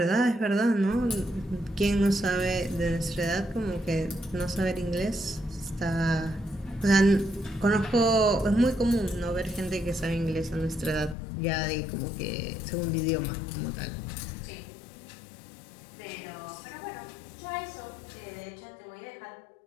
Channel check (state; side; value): drops out; right; at 11.2 s